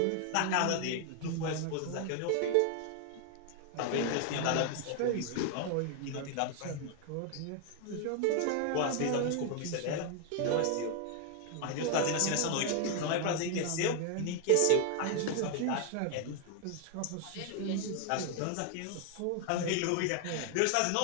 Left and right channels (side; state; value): both; different; correlation 0.00